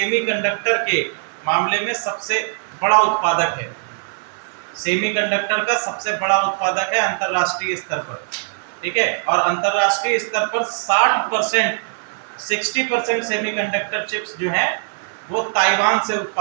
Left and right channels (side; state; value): left; silent; 57 dB below the other